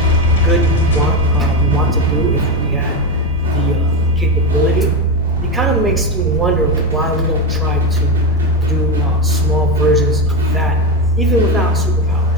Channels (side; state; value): both; normal; correlation 0.14